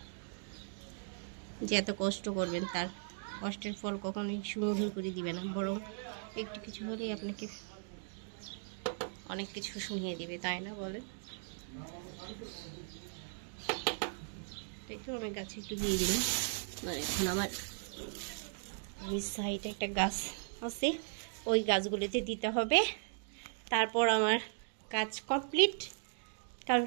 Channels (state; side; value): silent; left; digital silence